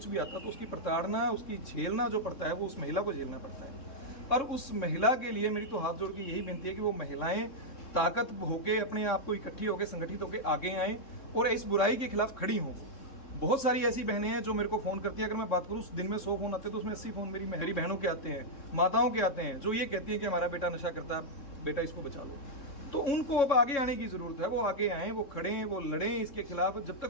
भी आता, तो उसकी प्रताड़ना, उसकी झेलना जो पड़ता है, वो उस महिला को झेलना पड़ता है। और उस महिला के लिए मेरी तो हाथ जोड़ के यही विनती है कि वो महिलाएं ताकत होके, अपने आप को इकट्ठी होकर, संगठित होकर आगे आएँ और इस बुराई के खिलाफ खड़ी हों। बहुत सारी ऐसी बहनें हैं जो मेरे को फ़ोन करती हैं, अगर मैं बात करूँ दिन में 100 फ़ोन आते हैं तो उसमें 80 फ़ोन मेरी बहनों के आते हैं, माताओं के आते हैं, जो ये कहती हैं कि हमारा बेटा नशा करता है, बेटा इसको बचा लो। तो उनको अब आगे आने की जरूरत है, वो आगे आएँ, वो खड़ें, वो लड़ें इसके खिलाफ। जब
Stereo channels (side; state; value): right; late; 3.7 ms